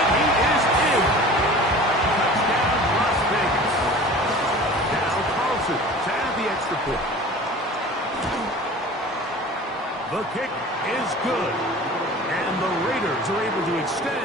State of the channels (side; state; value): both; normal; correlation 0.41